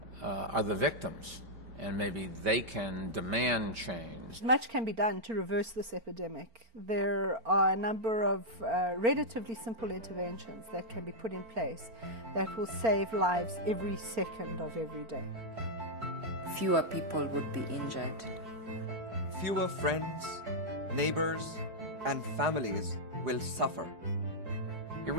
are the victims, and maybe they can demand change. Much can be done to reverse this epidemic. There are a number of relatively simple interventions that can be put in place that will save lives every second of every day. Fewer people would be injured. Fewer friends, neighbors, and families will suffer. It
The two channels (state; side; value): late; left; 4.4 ms